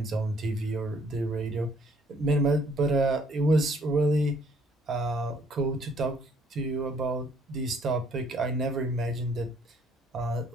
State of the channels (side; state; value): both; normal; correlation 0.63